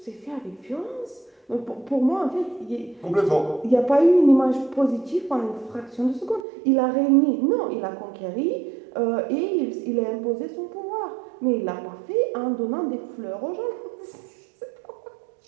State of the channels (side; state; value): left; drops out; at 6.4 s